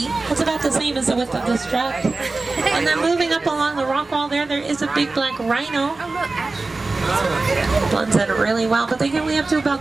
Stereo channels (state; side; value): quieter; left; 3.5 dB